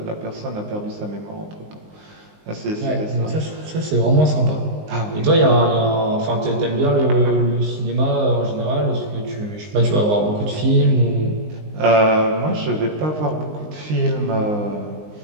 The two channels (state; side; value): late; left; 19 ms